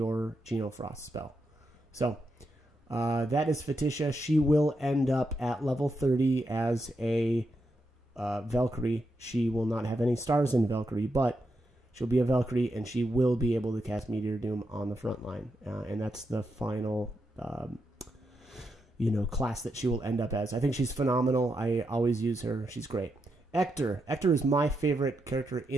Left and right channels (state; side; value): normal; both; correlation 0.84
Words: Genofrost spell. So, that is Feticia. She will end up at level 30 as a Valkyrie. She will not have any stars in Valkyrie, but she'll be a Valkyrie, and she will be able to cast Meteor Doom on the front line. And that's the final, you know, class that she will end up as. I think she's phenomenal. I always use her. She's great. Ector. Ector is my favorite character